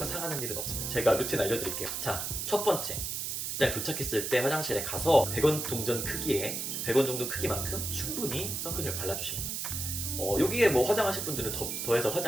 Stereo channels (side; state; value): right; noise; hiss, 3 dB below the sound